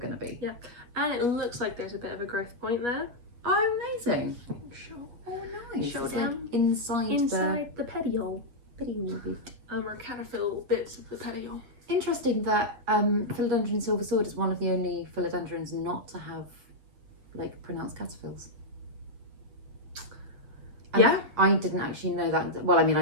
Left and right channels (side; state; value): left; late; 8.3 ms